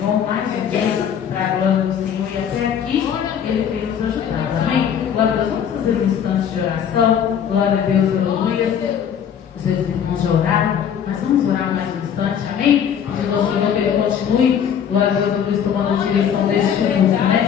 mais um dia, para a glória do Senhor, e até aqui Ele tem nos ajudado. Amém? Glória a Deus, vamos fazer um instante de oração. Glória a Deus, aleluia. Os meus irmãos já oraram, mas vamos orar mais um instante, amém? Pedindo ao Senhor que Ele continue. Glória a Deus, eu estou tomando a direção deste culto, né?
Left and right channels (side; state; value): right; quieter; 8.4 dB